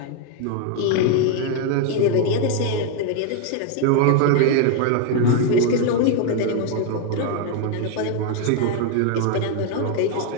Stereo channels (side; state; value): both; different; correlation 0.01